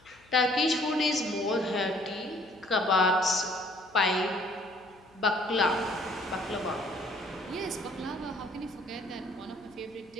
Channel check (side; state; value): left; noise; hum, 29 dB below the sound